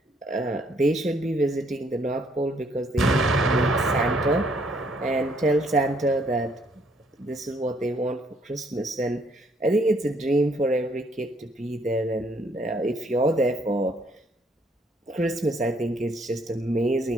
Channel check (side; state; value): both; normal; correlation 0.67